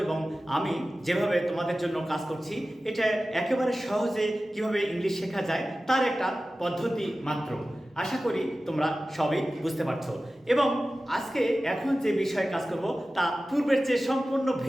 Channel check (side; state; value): both; normal; correlation 0.95